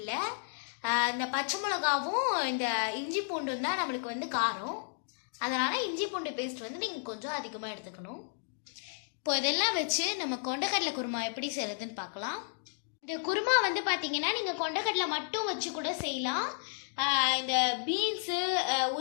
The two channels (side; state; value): right; silent; digital silence